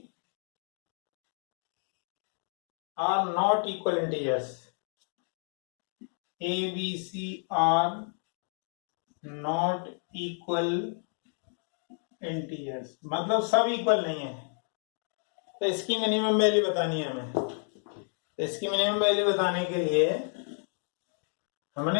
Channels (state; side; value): silent; right; 57 dB below the other